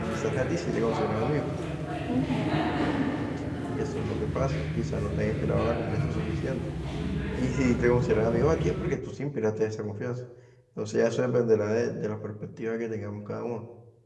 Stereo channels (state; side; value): identical; both; correlation 1.00